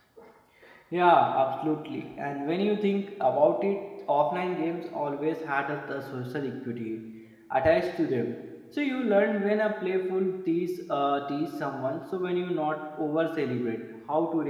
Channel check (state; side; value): identical; both; correlation 1.00